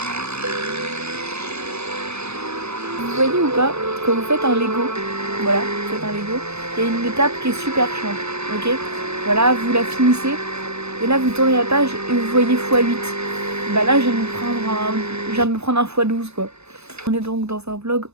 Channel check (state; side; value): late; left; 0.80 ms